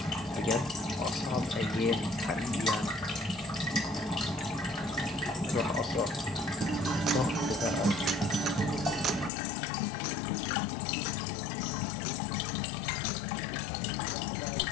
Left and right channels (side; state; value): right; drops out; at 9.3 s